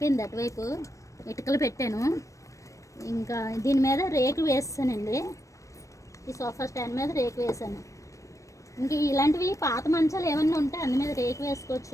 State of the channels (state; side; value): late; right; 0.15 ms